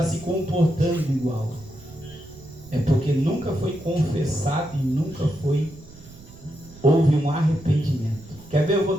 se comportando igual. É porque nunca foi confessado e nunca houve um arrependimento. Quer ver? Eu vou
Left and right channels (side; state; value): right; noise; rumble, 20 dB below the sound